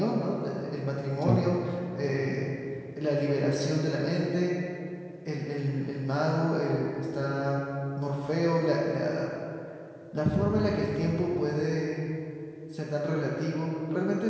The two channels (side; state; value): both; identical; correlation 1.00